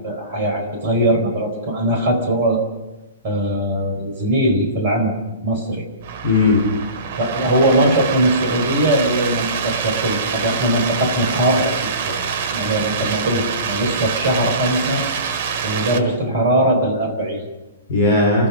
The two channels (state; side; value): inverted; both; correlation -0.36